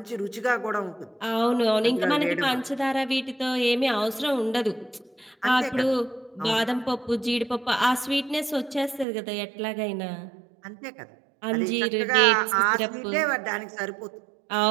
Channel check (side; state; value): left; drops out; at 9.1 s